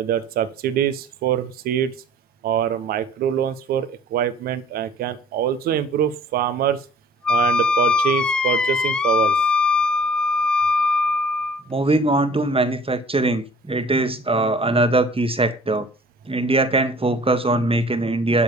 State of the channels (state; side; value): normal; both; correlation 0.50